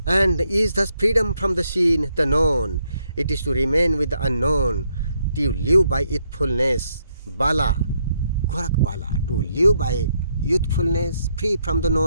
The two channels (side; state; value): both; inverted; correlation -0.75